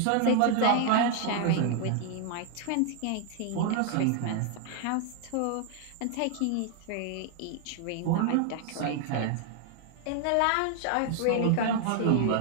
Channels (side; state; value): both; different; correlation 0.00